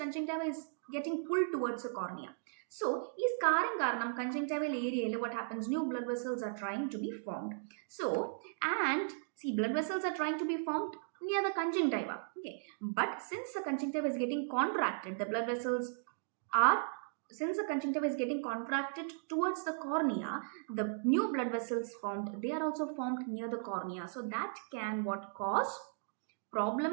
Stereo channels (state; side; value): silent; left; digital silence